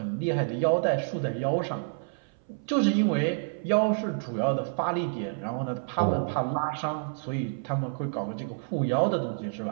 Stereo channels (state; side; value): silent; left; 59 dB below the other